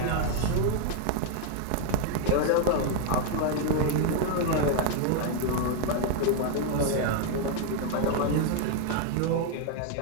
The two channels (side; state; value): both; different; correlation 0.00